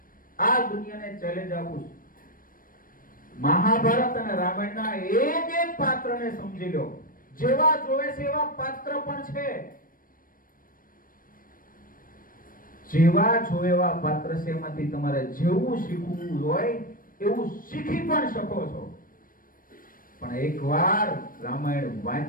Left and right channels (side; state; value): right; late; 0.41 ms